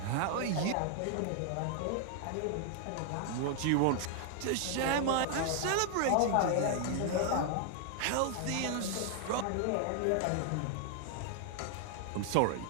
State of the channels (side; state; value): both; different; correlation 0.00